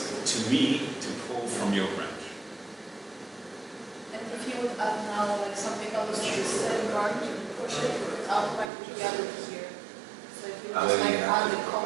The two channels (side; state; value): left; drops out; at 8.7 s